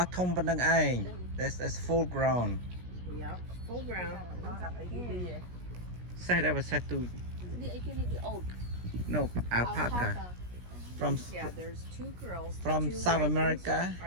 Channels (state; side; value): late; left; 17 ms